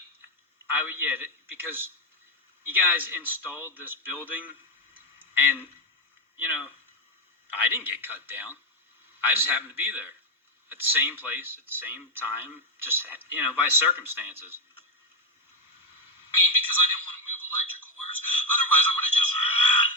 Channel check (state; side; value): normal; both; correlation 0.08